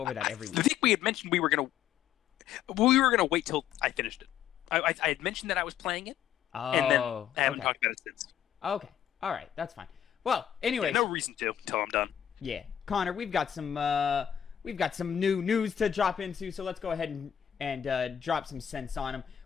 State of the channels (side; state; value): right; quieter; 9.9 dB